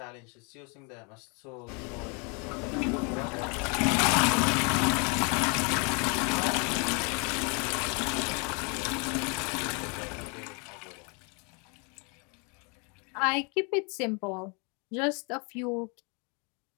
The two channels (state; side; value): quieter; right; 33.9 dB